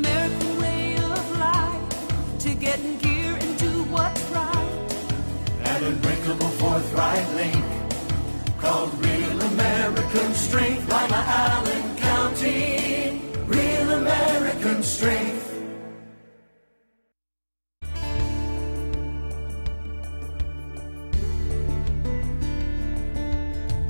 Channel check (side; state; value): both; inverted; correlation -1.00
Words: way of life, to get in gear and do what's right. An unbreakable forthright link called Real American Strength. Lima, Allen County, Real American Strength.